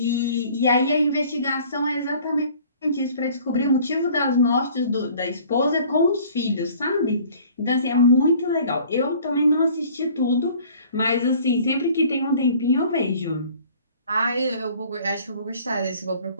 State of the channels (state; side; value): inverted; both; correlation -0.52